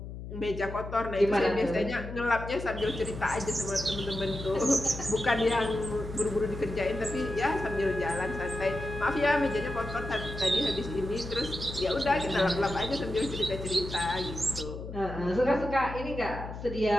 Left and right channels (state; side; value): noise; left; hum, 9 dB below the sound